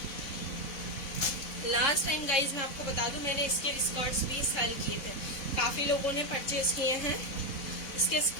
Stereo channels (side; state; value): right; late; 4.0 ms